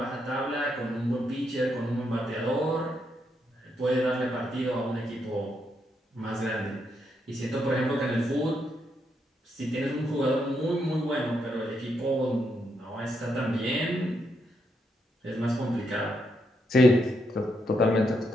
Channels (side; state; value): both; normal; correlation 0.79